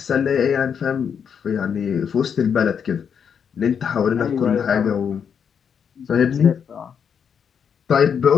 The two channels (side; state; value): right; quieter; 7.3 dB